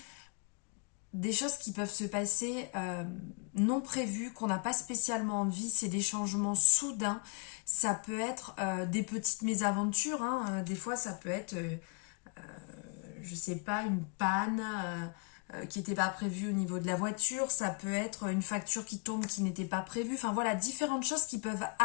des choses qui peuvent se passer non prévues, qu'on n'a pas spécialement envie, c'est des changements soudains, ça peut être des petites mésaventures, hein. Des fois ça peut être... je sais pas, une panne qui n'était pas prévue au niveau de la voiture, ça peut être une facture qui tombe qui n'était pas prévue, enfin voilà, différentes choses qui peuvent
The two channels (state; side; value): quieter; right; 35.8 dB